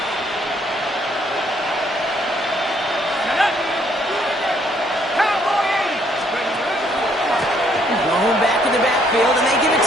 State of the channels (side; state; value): both; normal; correlation 0.67